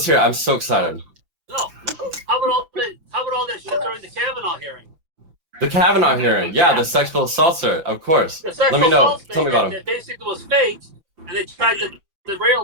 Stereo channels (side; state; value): left; late; 5.9 ms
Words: hear it. I'm so excited. No, how about all that shit during the Kavanaugh hearing? The Kavanaugh hearing, yeah, the sexual assaults, of course. Let me know. Tell me about him. That basically was fake, and they tried to